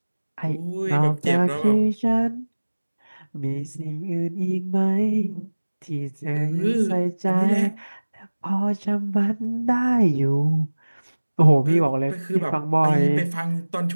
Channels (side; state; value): both; inverted; correlation -1.00